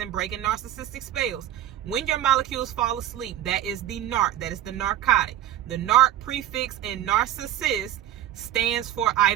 breaking narcissistic spells. When your molecules fall asleep, that is the narc, that is the narcotic. The narc prefix in narcissist stands for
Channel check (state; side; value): quieter; left; 12.2 dB